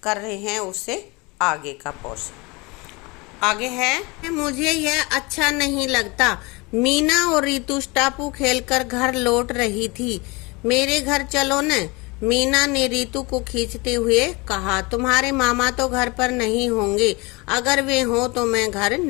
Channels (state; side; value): quieter; right; 25.9 dB